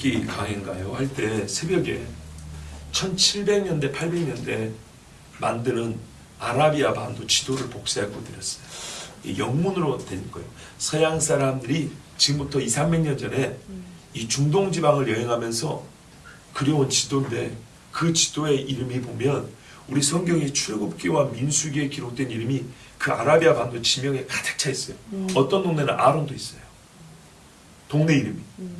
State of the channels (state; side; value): identical; both; correlation 1.00